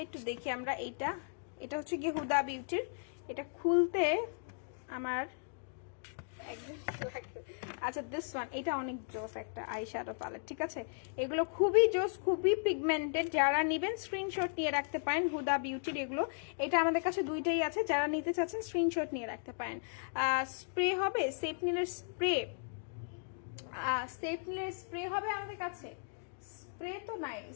একটু দেখি আমরা, এটা হচ্ছে কি হুদা বিউটির। এটা খুলতে আমার একদম লাগবে। আচ্ছা দিস ওয়ান, এটা অনেক জোস একটা আইশ্যাডো প্যালেট, ঠিক আছে? এগুলো খুবই জোস, খুবই পিগমেন্টেড। যারা নেবেন স্ক্রিনশট নিয়ে রাখতে পারেন হুদা বিউটির এগুলো। এটা আমাদের কাছে দুইটাই আছে, যারা নিতে চাচ্ছেন স্ক্রিনশট নিয়ে রাখতে পারেন। স্প্রে হবে, সেপনিলের স্প্রে হবে আমাদের কাছে। স্প্রে তো নাই,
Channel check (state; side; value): silent; right; digital silence